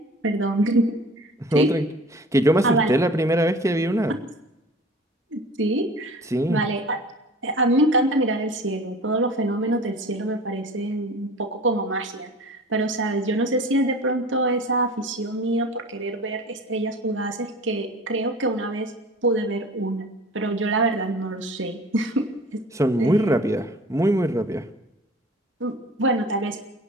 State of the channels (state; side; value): normal; both; correlation 0.41